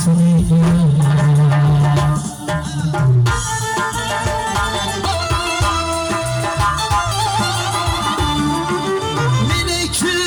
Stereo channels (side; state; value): both; identical; correlation 1.00